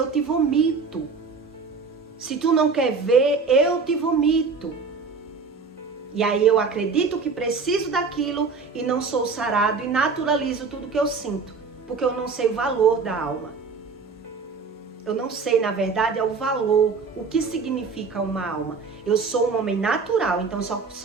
te vomito. Se tu não quer ver, eu te vomito. E aí eu acredito que preciso daquilo e não sou sarado e naturalizo tudo que eu sinto. Porque eu não sei o valor da alma. Eu não sei, na verdade, é o valor, o que significa uma alma. Eu sou um homem natural, então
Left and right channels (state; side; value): quieter; left; 4.8 dB